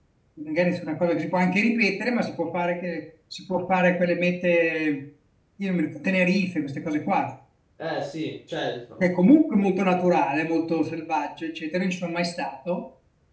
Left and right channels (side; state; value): both; identical; correlation 1.00